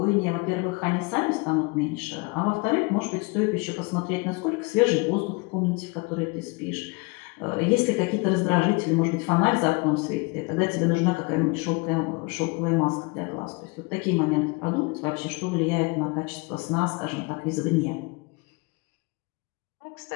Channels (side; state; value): right; quieter; 28.5 dB